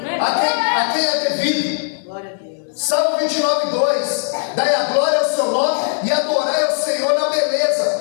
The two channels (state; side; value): silent; right; 61 dB below the other